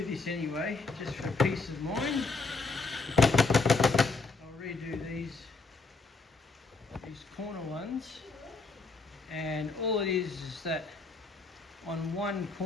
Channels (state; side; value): quieter; right; 3.9 dB